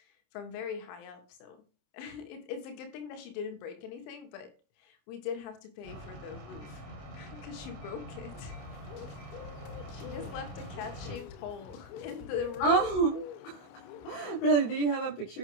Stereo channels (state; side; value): late; right; 27 ms